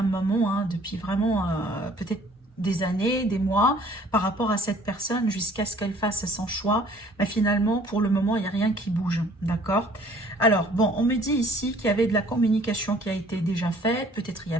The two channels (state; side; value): normal; both; correlation 0.56